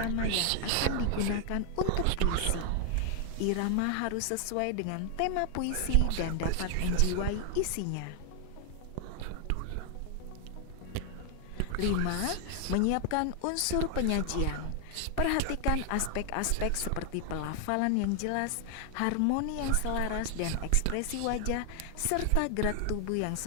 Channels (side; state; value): both; different; correlation 0.00